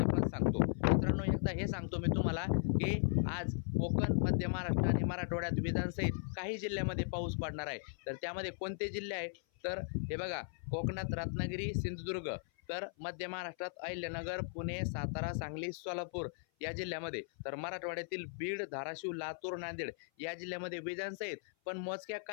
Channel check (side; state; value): right; silent; 53 dB below the other